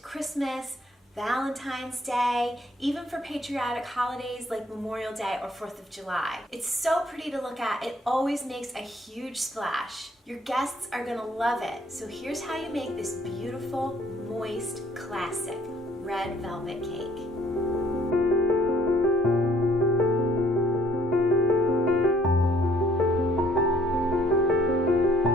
Valentine's Day, even for patriotic holidays like Memorial Day or 4th of July. It's so pretty to look at, it always makes a huge splash. Your guests are gonna love it. So here's how you make this beautiful, moist, classic red velvet cake.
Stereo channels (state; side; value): normal; both; correlation 0.62